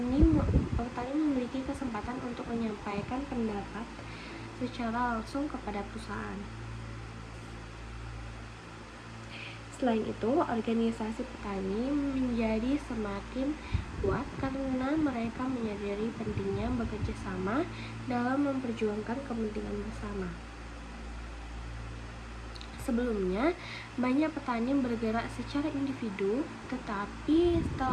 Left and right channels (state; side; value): identical; both; correlation 1.00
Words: memiliki kesempatan untuk menyampaikan pendapat secara langsung kepada perusahaan. Selain itu, organisasi petani menjadi semakin kuat karena mereka menyadari pentingnya bekerja sama dalam memperjuangkan kepentingan bersama. Sebelumnya, banyak petani bergerak secara individu, tetapi